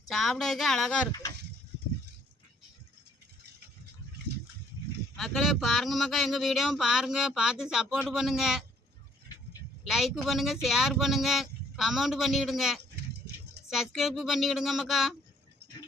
சாப்பிட்றதுக்கே அழகாக இருக்குது. மக்களே பாருங்கள் மக்கா, எங்கள் வீடியோவும் பாருங்கள், பார்த்து சப்போர்ட் பண்ணுங்கள், லைக் பண்ணுங்கள், ஷேர் பண்ணுங்கள், கமெண்ட் பண்ணிவிடுங்க, சப்ஸ்கிரைப் பண்ணிவிடுங்க மக்கா.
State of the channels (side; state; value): both; normal; correlation 0.64